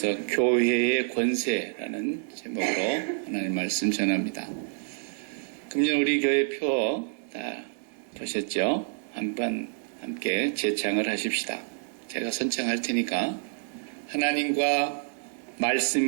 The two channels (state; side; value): silent; left; digital silence